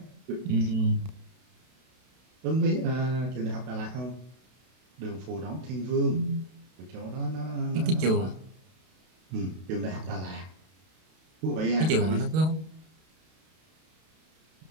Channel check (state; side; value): late; left; 32 ms